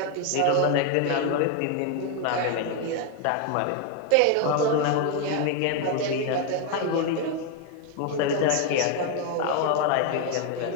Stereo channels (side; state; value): both; different; correlation 0.01